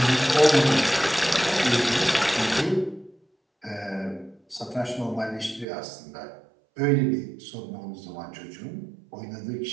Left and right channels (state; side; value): drops out; left; at 5.7 s